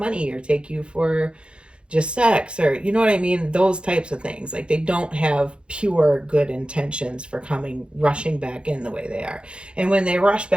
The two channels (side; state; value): left; late; 0.056 ms